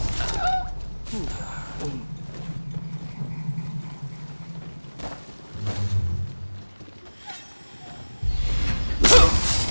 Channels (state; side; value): inverted; both; correlation -1.00